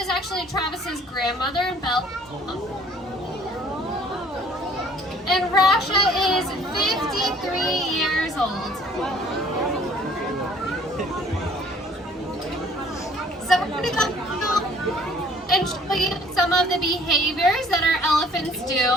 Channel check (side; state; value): both; normal; correlation 0.56